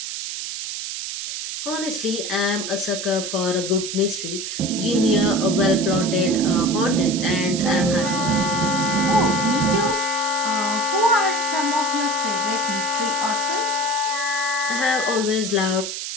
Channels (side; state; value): right; noise; hiss, 5 dB below the sound